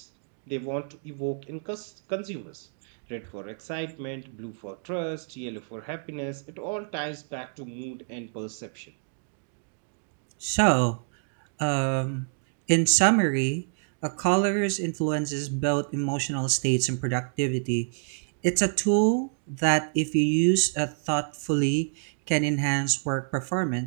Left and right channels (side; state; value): left; silent; digital silence